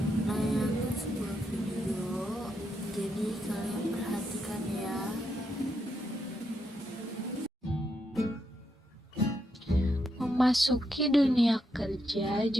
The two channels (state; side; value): normal; both; correlation 0.81